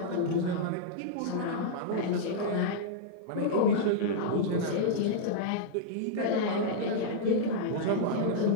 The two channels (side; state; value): both; different; correlation -0.02